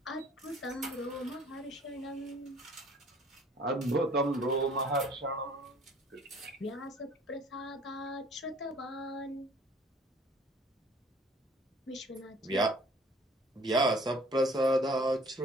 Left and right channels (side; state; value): both; normal; correlation 0.53